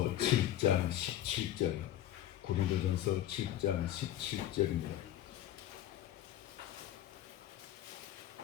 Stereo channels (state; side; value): quieter; right; 12.4 dB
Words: 7장 17절, 고린도전서 7장 17절입니다.